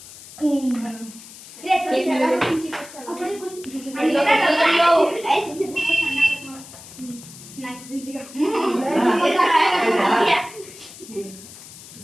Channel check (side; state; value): left; noise; hiss, 17 dB below the sound